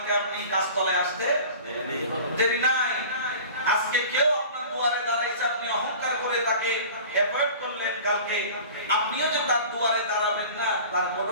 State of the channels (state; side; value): inverted; both; correlation -0.40